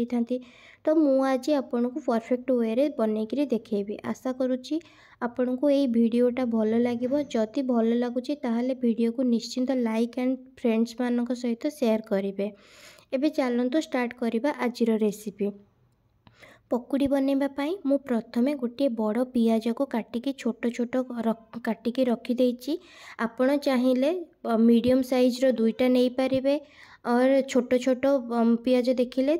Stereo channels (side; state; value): both; identical; correlation 1.00